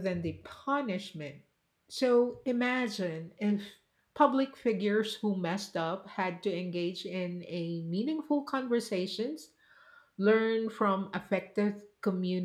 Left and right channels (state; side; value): identical; both; correlation 1.00